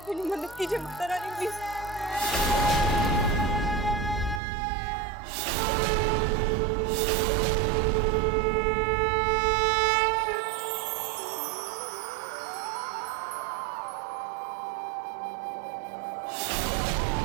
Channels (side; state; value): left; drops out; at 4.4 s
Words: मेरी मदद कीजिए माता रानी प्लीज।